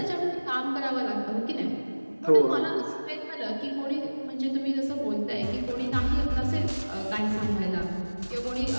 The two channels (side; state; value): both; inverted; correlation -1.00